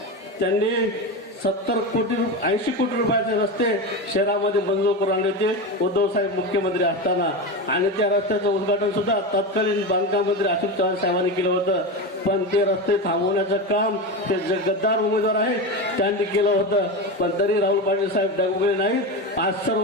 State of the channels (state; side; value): normal; both; correlation 0.20